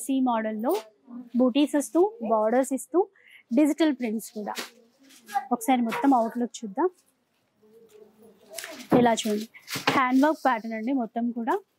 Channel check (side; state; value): both; identical; correlation 1.00